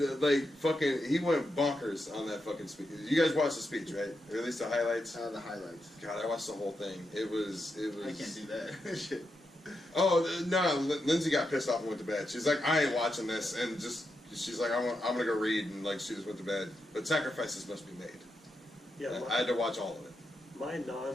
he went bonkers on that fucking speech. You guys watched the speech, right? Or at least the highlights. The highlights. God, I watched the whole thing. It was. I can't do that. Shit. Oh no, Lindsay got pissed off and went to bed. She's like, I ain't watching this, and she's like, I'm gonna go read, and like she just went to bed. But sacrifices must be made. Yeah, I had to watch all of it. my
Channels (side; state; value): both; normal; correlation 0.86